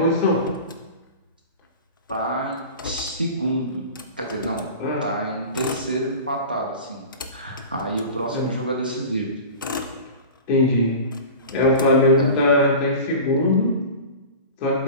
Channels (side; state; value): both; inverted; correlation -0.35